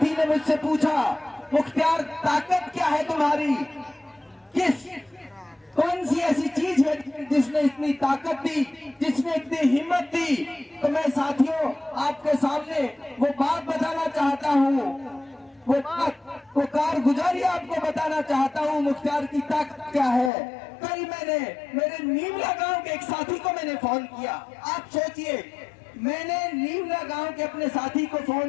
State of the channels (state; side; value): drops out; right; at 20.3 s